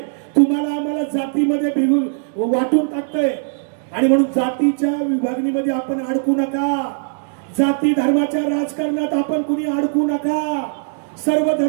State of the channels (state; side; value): silent; left; digital silence